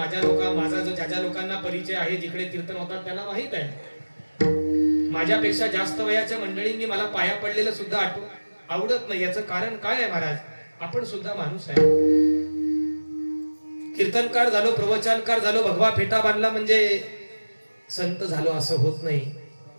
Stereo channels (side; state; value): both; inverted; correlation -1.00